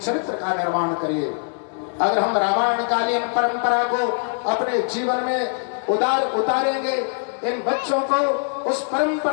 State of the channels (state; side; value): silent; right; 62 dB below the other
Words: का निर्माण करिए। अगर हम रामायणकालीन परंपरा को अपने जीवन में उतारेंगे, इन बच्चों को उस